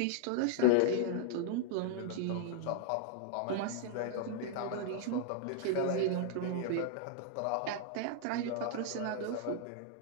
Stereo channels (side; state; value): both; different; correlation -0.01